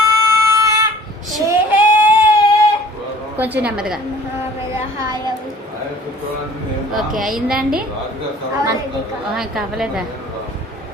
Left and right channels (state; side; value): normal; both; correlation 0.50